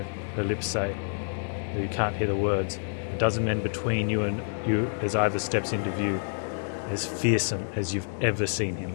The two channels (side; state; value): right; silent; digital silence